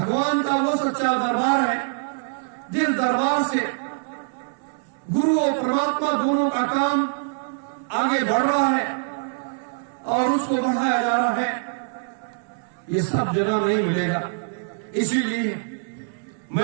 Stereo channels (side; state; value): left; silent; 63 dB below the other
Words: का वो सच्चा दरबार है, जिस दरबार से गुरु और परमात्मा दोनों का काम आगे बढ़ रहा है और उसको बढ़ाया जा रहा है। ये सब जगह नहीं मिलेगा। इसीलिए